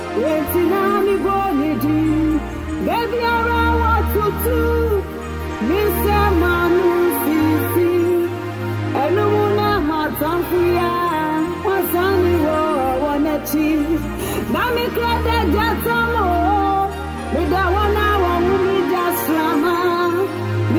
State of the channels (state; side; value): identical; both; correlation 1.00